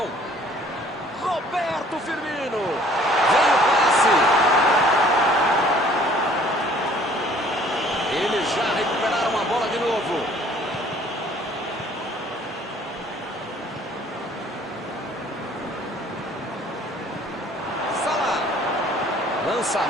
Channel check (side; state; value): both; normal; correlation 0.56